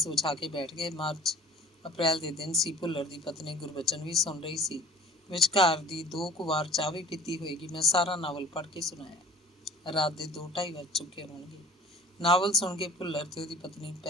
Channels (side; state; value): both; normal; correlation 0.45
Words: ਵਿਛਾ ਕੇ ਬੈਠ ਗਏ। ਅਪ੍ਰੈਲ ਦੇ ਦਿਨ ਸੀ। ਭੁੱਲਰ ਦੀ ਪਤਨੀ ਗੁਰਬਚਨ ਵੀ ਸੁਣ ਰਹੀ ਸੀ। ਵਿਚਕਾਰ ਦੀ 2 ਕੁ ਵਾਰ ਚਾਹ ਵੀ ਪੀਤੀ ਹੋਏਗੀ। ਮੈਂ ਸਾਰਾ ਨਾਵਲ ਪੜ੍ਹ ਕੇ ਸੁਣਾਇਆ। ਰਾਤ ਦੇ 2-2:30 ਵੱਜ ਚੁੱਕੇ ਹੋਣਗੇ। ਨਾਵਲ ਸੁਣ ਕੇ ਭੁੱਲਰ ਤੇ ਉਹਦੀ ਪਤਨੀ